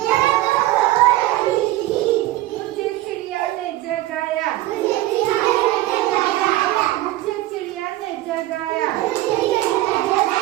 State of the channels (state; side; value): quieter; left; 16.4 dB